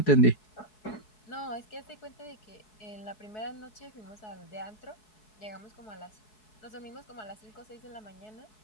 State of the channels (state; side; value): late; right; 4.7 ms